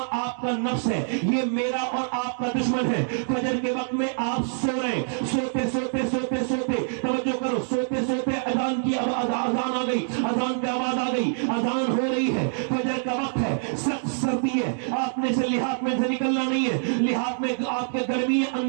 آپ کا نفس ہے، یہ میرا اور آپ کا دشمن ہے۔ فجر کے وقت میں آپ سو رہے، سوتے سوتے سوتے سوتے، توجہ کرو، سوتے سوتے اذان کی اذان آ گئی، اذان کی آواز آ گئی، اذان ہو رہی ہے، فجر کا وقت ہے، سخت سردی ہے، آپ نے سے لحاظ میں سے نکلنا نہیں ہے، لحاظ میں آپ کے گرمی ہے،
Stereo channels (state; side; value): silent; left; digital silence